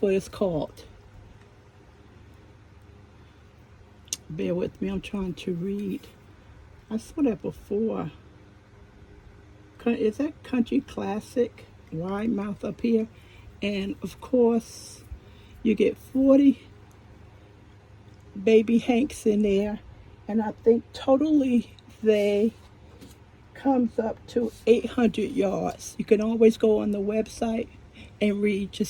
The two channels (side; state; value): both; identical; correlation 1.00